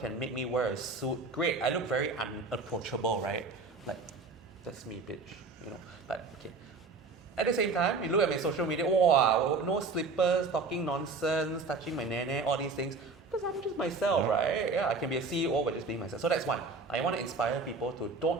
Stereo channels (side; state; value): left; quieter; 3.9 dB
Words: make me wear a suit. Great, I look very unapproachable, right? Like, that's me, bitch, you know. But okay. At the same time, you look at my social media, wow, no slippers, talking nonsense, touching my nene, all these things. Because I'm just myself, right? Yeah, I can be a CEO by just being myself. So that's one. I want to inspire people to